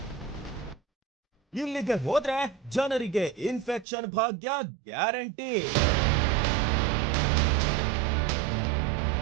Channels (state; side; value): drops out; left; at 3.9 s